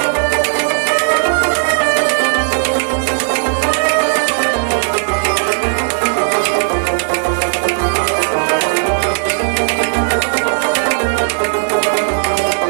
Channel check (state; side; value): silent; left; digital silence